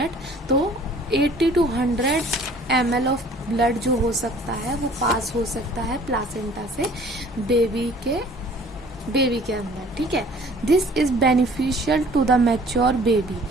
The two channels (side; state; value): both; normal; correlation 0.52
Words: तो 80 to 100 ml ऑफ ब्लड जो हो सकता है वो पास हो सकता है प्लासेंटा से बेबी के अंदर। ठीक है, this is beneficial to the mature baby,